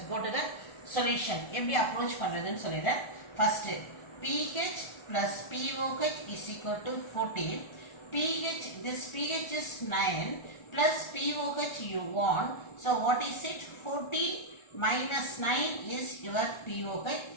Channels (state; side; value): late; right; 1.4 ms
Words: go to the solution. எப்படி அப்ரோச் பண்றதுன்னு சொல்லிடுறேன். First pH plus POH is equal to 14. This pH is 9 plus POH you want. So what is it? 14 minus 9 is your POH.